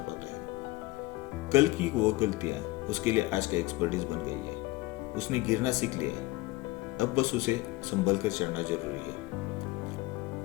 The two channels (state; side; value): quieter; right; 20.5 dB